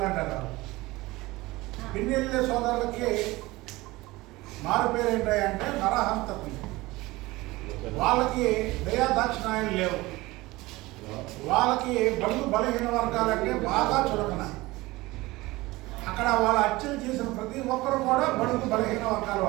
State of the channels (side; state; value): left; quieter; 20.4 dB